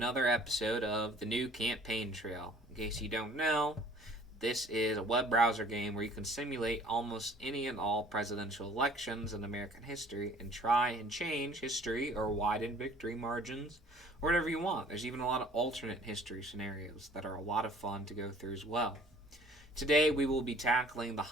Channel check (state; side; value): normal; both; correlation 0.54